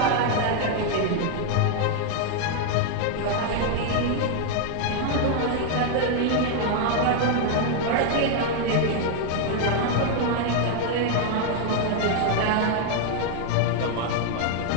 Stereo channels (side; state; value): both; different; correlation 0.00